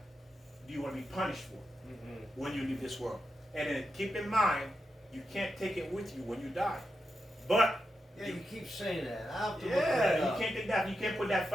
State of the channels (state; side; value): normal; both; correlation 0.87